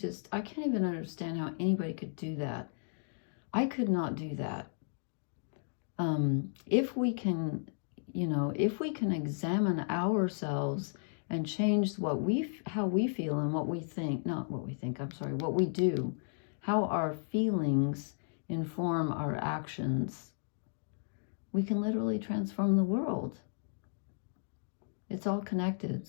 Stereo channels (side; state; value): right; silent; digital silence